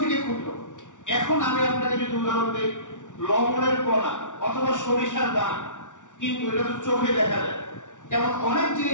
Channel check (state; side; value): late; right; 0.86 ms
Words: থেকে ক্ষুদ্র। এখন আমি আপনাকে যদি উদাহরণ দিই, লবণের কণা অথবা সরিষার দানা, কিন্তু এটা তো চোখে দেখা যায়। এমন অনেক